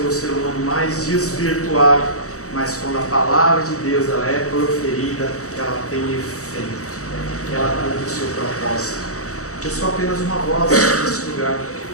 ser humano mais desvirtuado, mas quando a palavra de Deus ela é proferida, ela tem efeito, ela cumpre o seu propósito. Eu sou apenas uma voz nesse lugar,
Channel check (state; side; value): late; right; 0.65 ms